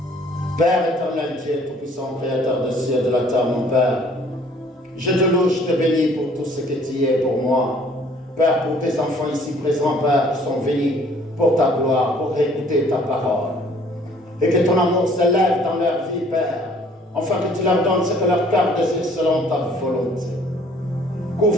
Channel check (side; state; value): both; normal; correlation 0.57